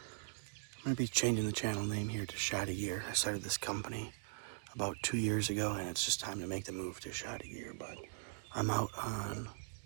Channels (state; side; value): silent; left; digital silence